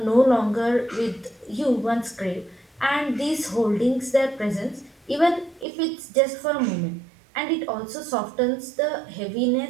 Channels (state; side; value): drops out; left; at 5.7 s